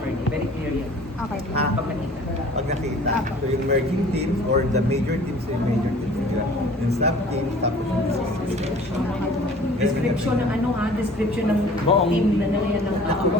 Very clear yan. Okay po. ha? Pag nakita. Pag nakita. Apo. So, yung merging teams or the major teams yung major teams nila. Yung sub-teams, tapos yung description. Description ng ano ha? Description ng Buong- team na nalayan ng tao. Ako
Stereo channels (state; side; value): normal; both; correlation 0.48